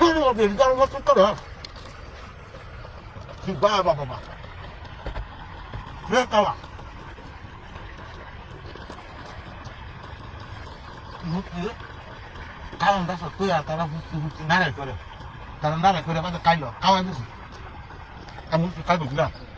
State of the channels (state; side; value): identical; both; correlation 1.00